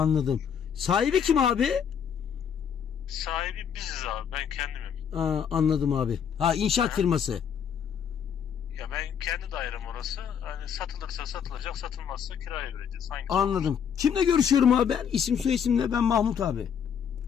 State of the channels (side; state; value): right; quieter; 7.8 dB